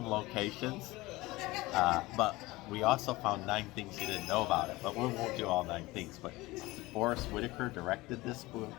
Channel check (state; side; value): quieter; right; 20.4 dB